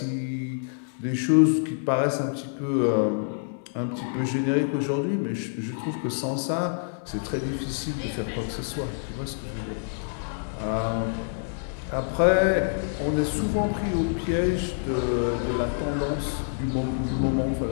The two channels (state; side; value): silent; right; 56 dB below the other